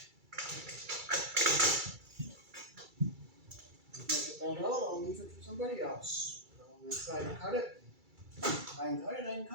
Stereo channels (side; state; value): left; late; 2.3 ms